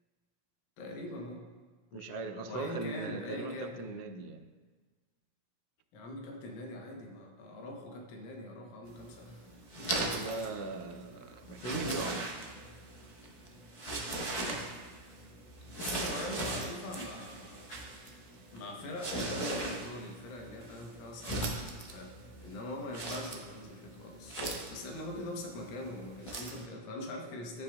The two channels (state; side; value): late; right; 17 ms